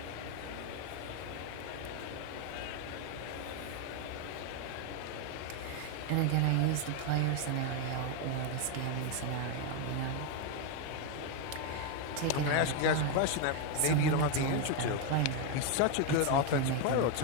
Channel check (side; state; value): both; different; correlation 0.01